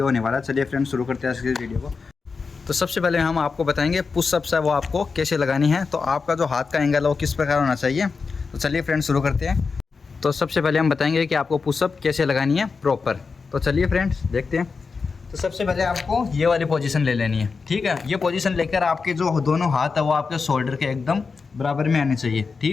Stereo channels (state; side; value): quieter; right; 4.8 dB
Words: होने वाला है, चलिए फ्रेंड्स शुरू करते हैं इस वीडियो को। तो सबसे पहले हम आपको बताएंगे पुशअप्स है वो आपको कैसे लगानी है, तो आपका जो हाथ का एंगल है वो किस प्रकार होना चाहिए। तो चलिए फ्रेंड्स शुरू करते हैं। तो सबसे पहले हम बताएंगे कि आपको पुशअप कैसे लगानी है प्रॉपर। तो चलिए फ्रेंड्स देखते हैं। तो सबसे पहले आपको ये वाली पोजीशन ले लेनी है। ठीक है, ये पोजीशन लेकर आपके जो दोनों हाथ है वो आपके शोल्डर के एकदम बराबर में आने चाहिए।